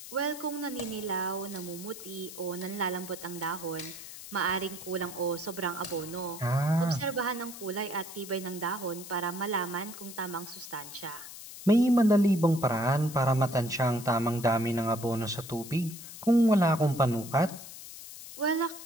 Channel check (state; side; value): noise; left; hiss, 13 dB below the sound